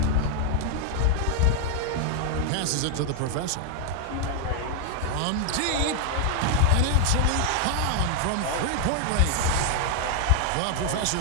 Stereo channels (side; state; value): both; different; correlation 0.00